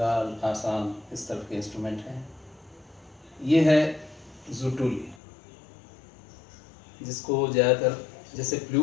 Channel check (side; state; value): right; drops out; at 5.2 s